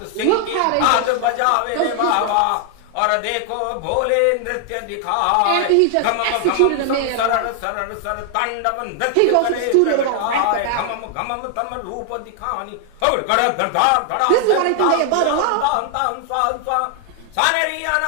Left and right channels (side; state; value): both; different; correlation 0.00